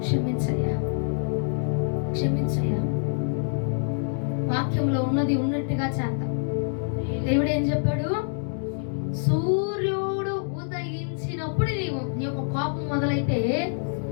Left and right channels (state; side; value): silent; right; digital silence